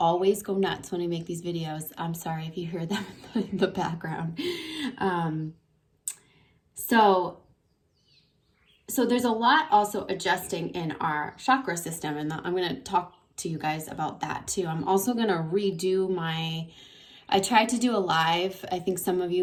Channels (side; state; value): both; identical; correlation 1.00